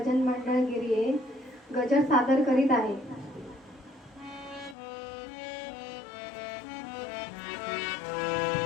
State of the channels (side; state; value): right; drops out; at 4.8 s